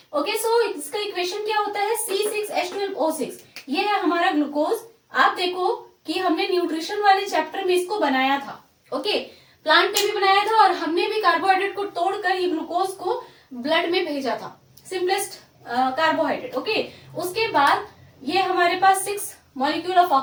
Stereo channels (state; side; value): identical; both; correlation 1.00